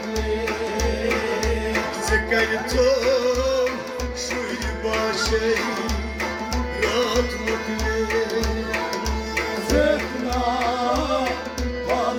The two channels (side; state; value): both; identical; correlation 1.00